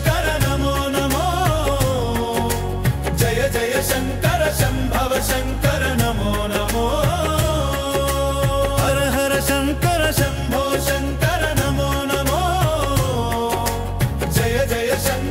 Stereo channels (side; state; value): both; identical; correlation 1.00